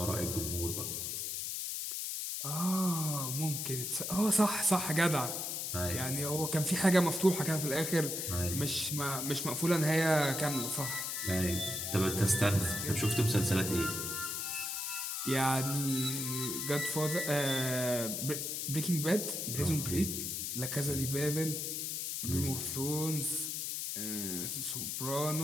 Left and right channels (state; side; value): noise; left; hiss, 3 dB below the sound